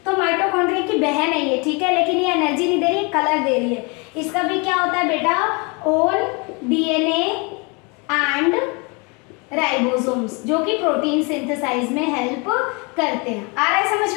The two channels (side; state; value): right; quieter; 30.7 dB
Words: तो माइटोकॉन्ड्रिया की बहन है ये, ठीक है, लेकिन ये एनर्जी नहीं दे रही है, कलर दे रही है। इसका भी क्या होता है बेटा, ओन डीएनए एंड राइबोसोम्स, जो कि प्रोटीन सिंथेसाइज में हेल्प करते हैं। आ रहा है समझ